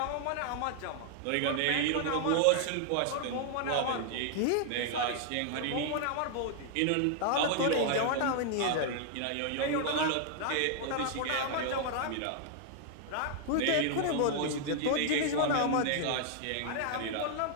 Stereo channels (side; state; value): both; different; correlation 0.00